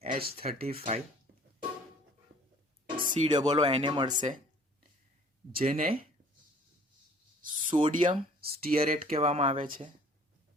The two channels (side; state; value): both; normal; correlation 0.53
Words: COO એને મળશે, જેને સોડિયમ સ્ટીયરેટ કહેવામાં આવે છે.